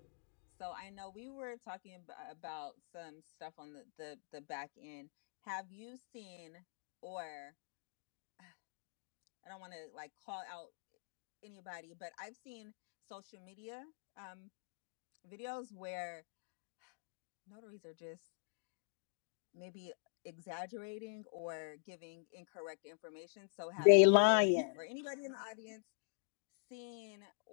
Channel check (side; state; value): right; silent; digital silence